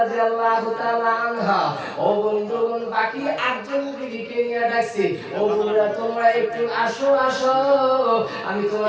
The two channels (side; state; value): both; identical; correlation 1.00